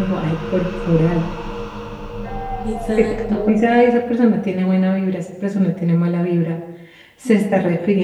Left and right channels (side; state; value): both; identical; correlation 1.00